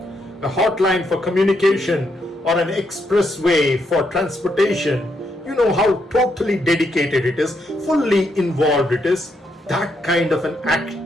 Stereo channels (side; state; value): both; normal; correlation 0.78